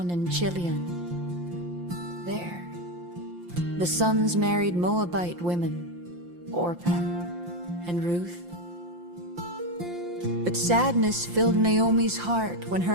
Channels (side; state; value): left; late; 5.7 ms